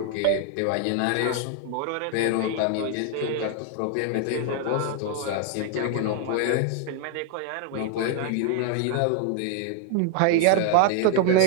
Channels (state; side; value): different; both; correlation 0.00